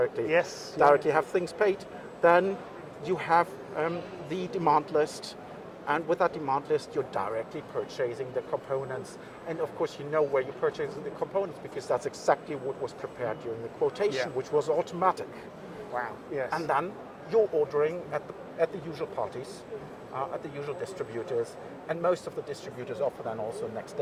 directly have things paid. Then you have the demand list, And with that demand list, you're directly purchasing the components. And of course, you know where you're purchasing the components because that's exactly what was prepared during the quotation, which was automatic. Wow. Yes. And then you're ordering at the usual parties, at the usual distributors, and most of the distributors offer then also next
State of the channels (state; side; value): identical; both; correlation 1.00